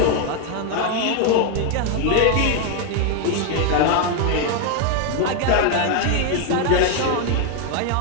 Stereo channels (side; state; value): both; different; correlation 0.00